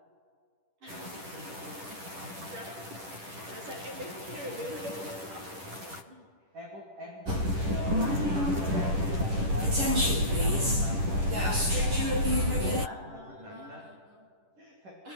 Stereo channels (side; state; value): left; late; 10 ms